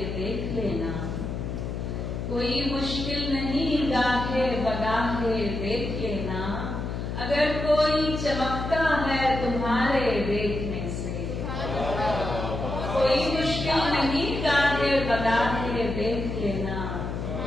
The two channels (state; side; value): noise; left; hum, 4 dB below the sound